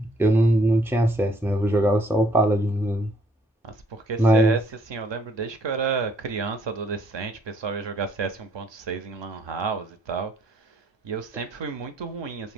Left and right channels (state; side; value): normal; both; correlation 0.65